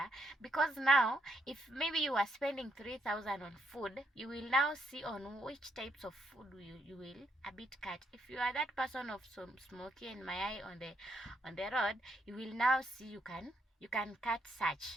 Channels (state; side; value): normal; both; correlation 0.76